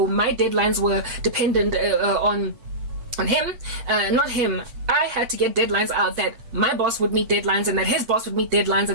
my deadlines were dependent on him, not him. I had to get deadlines out that my boss would meet deadlines, and that his boss would meet deadlines,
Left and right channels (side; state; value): left; late; 8.1 ms